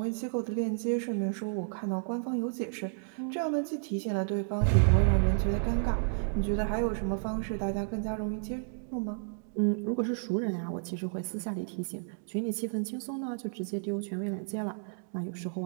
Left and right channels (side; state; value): left; silent; digital silence